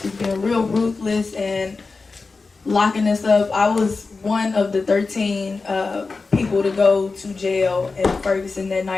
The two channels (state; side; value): quieter; right; 4.1 dB